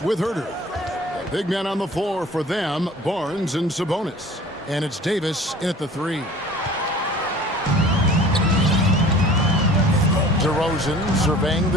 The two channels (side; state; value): both; normal; correlation 0.46